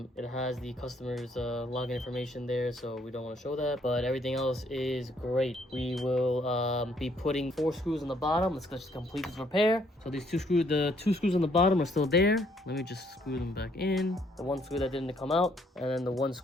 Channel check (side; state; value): both; normal; correlation 0.67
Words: It has the customer's login information there, so we don't want to show that. But everything else is great. We will be putting 4 screws on the bottom. Let's just complete this repair. So these the two screws on the bottom are still there. Let me just screw them back in. The one screw that didn't come out, and then the one